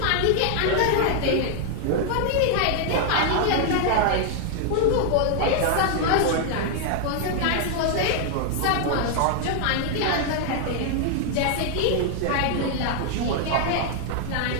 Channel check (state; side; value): different; both; correlation 0.00